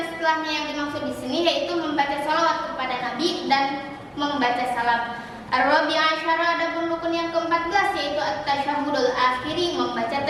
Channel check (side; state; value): both; identical; correlation 1.00